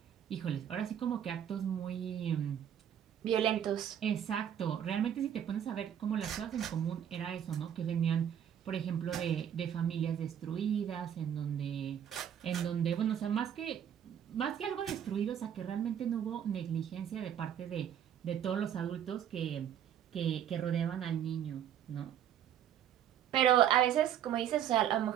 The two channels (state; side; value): quieter; left; 9.5 dB